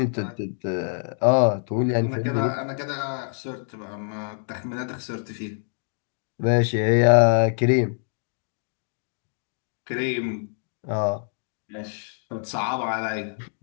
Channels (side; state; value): right; silent; digital silence